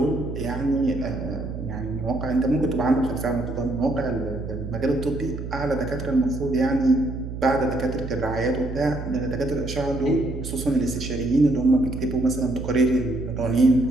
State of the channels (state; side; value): noise; right; hum, 7 dB below the sound